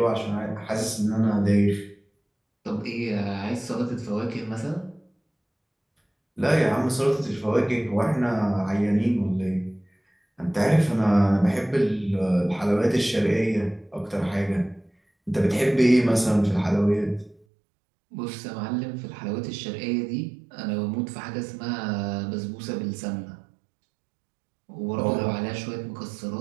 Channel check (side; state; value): left; drops out; at 17.4 s